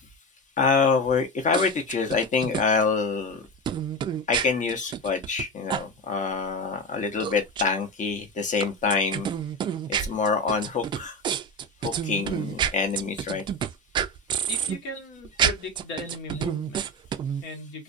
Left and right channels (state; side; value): normal; both; correlation 0.20